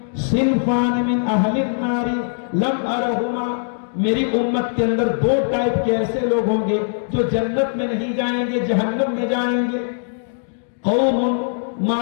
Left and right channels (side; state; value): right; silent; digital silence